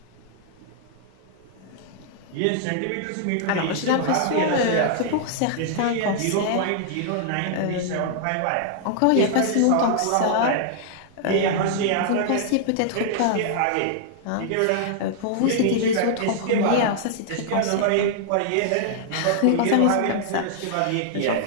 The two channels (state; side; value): different; both; correlation -0.01